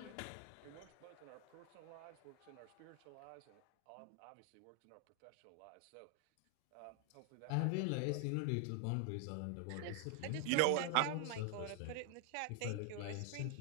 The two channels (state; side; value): different; both; correlation 0.00